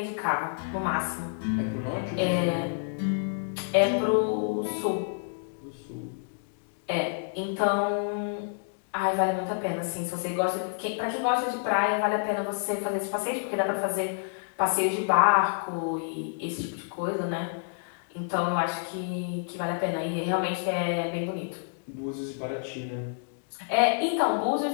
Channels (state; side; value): silent; right; digital silence